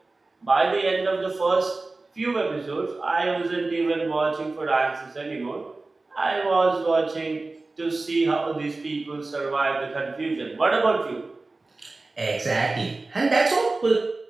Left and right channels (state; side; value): quieter; left; 3.4 dB